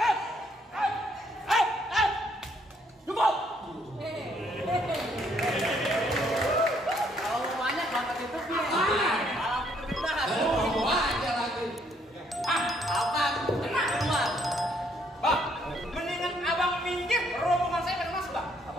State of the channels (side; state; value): both; normal; correlation 0.68